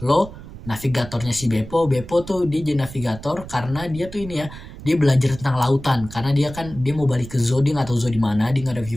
Lo, navigatornya si Beppo tuh dia jadi navigator karena dia tuh ini ya, dia belajar tentang lautan karena dia mau balik ke Zoo, dia nggak tahu Zoo di mana, dia nggak ada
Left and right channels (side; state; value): right; noise; rumble, 14 dB below the sound